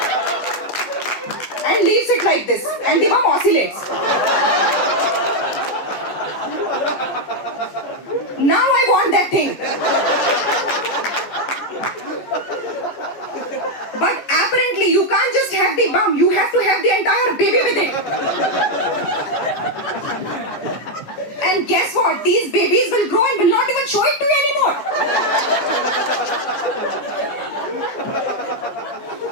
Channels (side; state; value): right; late; 14 ms